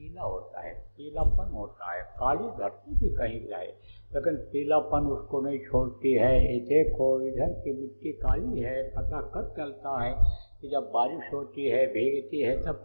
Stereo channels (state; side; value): inverted; both; correlation -1.00